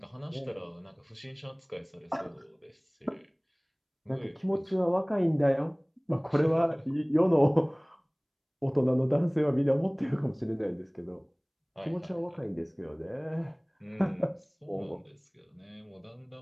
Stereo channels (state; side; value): identical; both; correlation 1.00